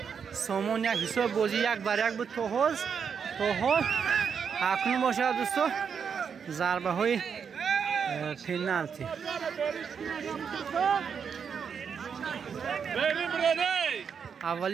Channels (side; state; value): left; quieter; 6.7 dB